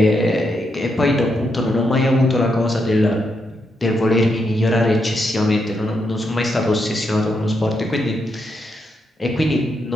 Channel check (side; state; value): both; normal; correlation 0.81